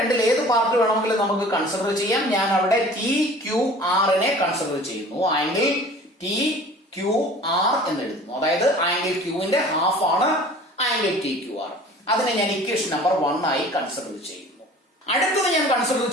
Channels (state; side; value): normal; both; correlation 0.45